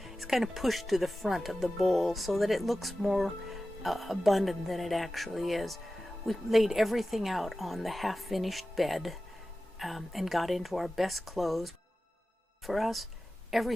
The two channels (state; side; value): normal; both; correlation 0.95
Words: is kind of pushed to the front of the bowl so that it looks more abundant than it actually is. We laid everything out on the half-finished bed and got into our best clothes. For us,